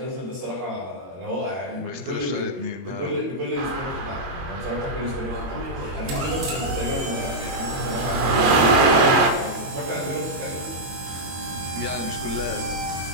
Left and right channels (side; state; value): left; late; 22 ms